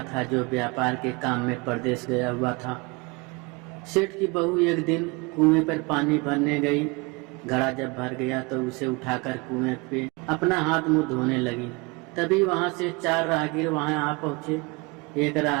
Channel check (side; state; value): left; quieter; 27.1 dB